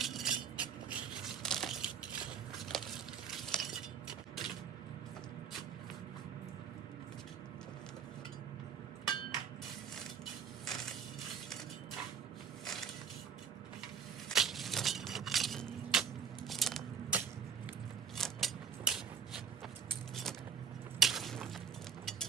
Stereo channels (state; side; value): quieter; left; 6.9 dB